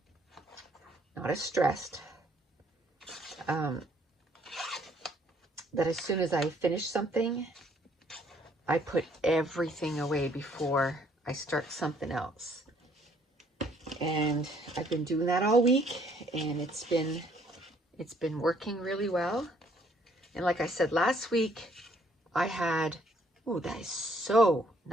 not as stressed. That as soon as I finish something, I put everything away before I start something else. And I've been doing that all week, and it's been working really well. And like I said last week, I had Oh, that is so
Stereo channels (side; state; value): both; normal; correlation 0.65